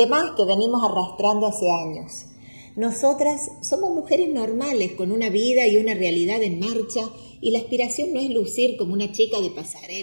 más que venimos arrastrando hace años. Nosotras somos mujeres normales con una vida y una realidad en marcha y la aspiración no es lucir como una chica de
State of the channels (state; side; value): inverted; both; correlation -1.00